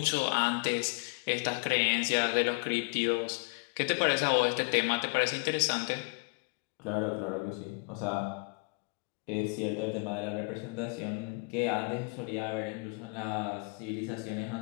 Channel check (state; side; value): quieter; right; 31.6 dB